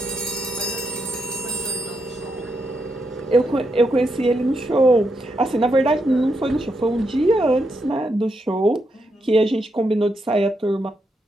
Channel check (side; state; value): both; normal; correlation 0.82